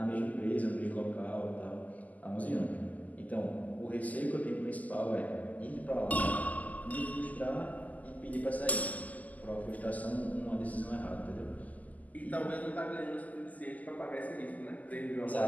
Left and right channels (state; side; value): late; right; 0.078 ms